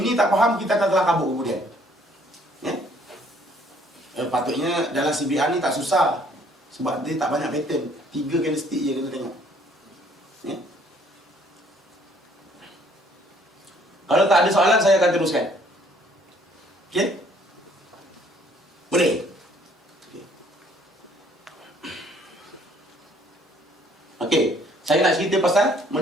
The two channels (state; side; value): normal; both; correlation 0.61